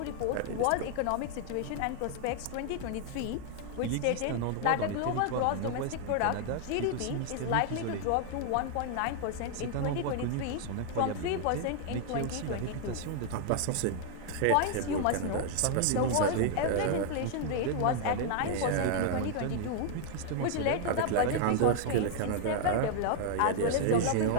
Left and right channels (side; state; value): both; different; correlation 0.00